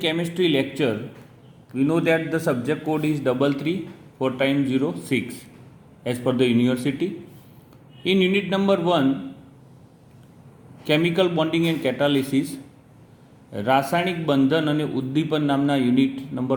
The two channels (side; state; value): both; identical; correlation 1.00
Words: lecture, we know that the subject code is 334 as per the university. In unit number 1, chemical bonding and catalysis, રાસાયણિક બંધન અને ઉદ્દીપન નામના યુનિટ